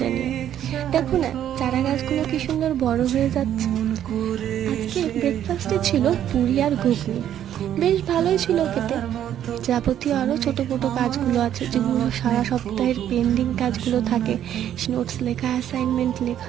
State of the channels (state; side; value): quieter; left; 10.7 dB